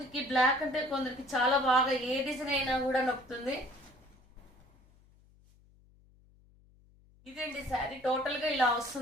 బ్లాక్ అంటే కొందరికి చాలా బాగా, ఏ డిజైన్ అయినా కూడా నొక్కుతుంది. ఇదండి శారీ టోటల్ గా ఇలా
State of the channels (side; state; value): left; noise; hum, 29 dB below the sound